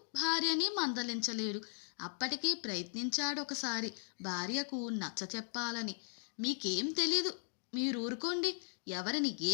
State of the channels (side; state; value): right; silent; 53 dB below the other